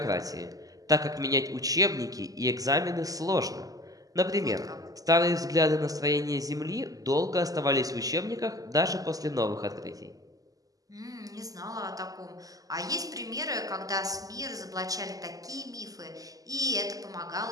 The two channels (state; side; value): late; left; 0.17 ms